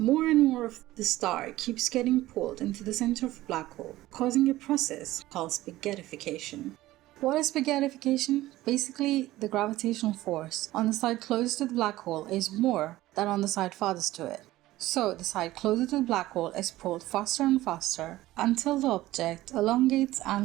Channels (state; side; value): quieter; left; 16.4 dB